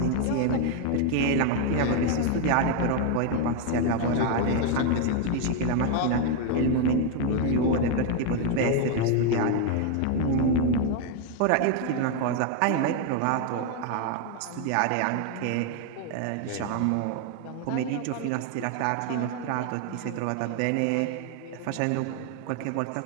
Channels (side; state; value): both; different; correlation 0.01